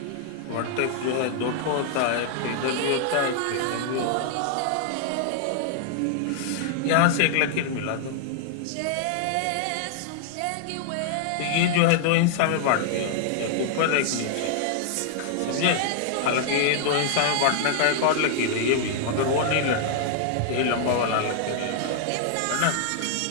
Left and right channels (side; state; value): both; different; correlation -0.01